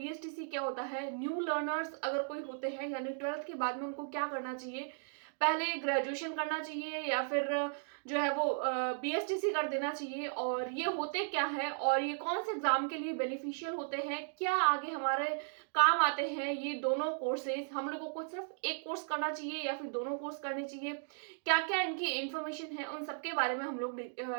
क्या होता है। न्यू लर्नर्स अगर कोई होते हैं यानी 12th के बाद में उनको क्या करना चाहिए, पहले ग्रेजुएशन करना चाहिए या फिर जो है वो बीएसटीसी कर देना चाहिए, और ये होते क्या है और ये कौन से एग्जाम के लिए बेनिफिशियल होते हैं, क्या आगे हमारे काम आते हैं ये दोनों कोर्सेज। हम लोगों को सिर्फ एक कोर्स करना चाहिए या फिर दोनों कोर्स करने चाहिए, क्या क्या इनकी इंफॉर्मेशन है, उन सबके बारे में हम लोग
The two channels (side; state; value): left; silent; digital silence